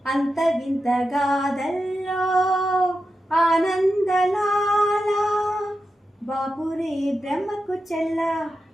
అంత వింత గాథల్లో ఆనందలాల, బాపురే బ్రహ్మకు చెల్ల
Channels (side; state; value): both; normal; correlation 0.90